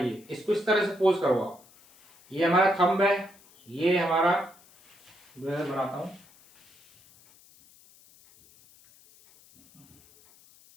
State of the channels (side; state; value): left; noise; hiss, 27 dB below the sound